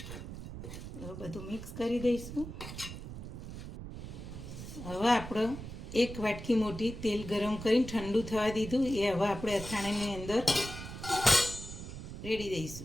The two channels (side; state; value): right; noise; rumble, 10 dB below the sound